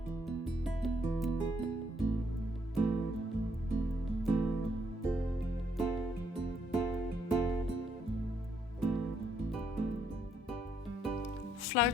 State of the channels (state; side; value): normal; both; correlation 0.72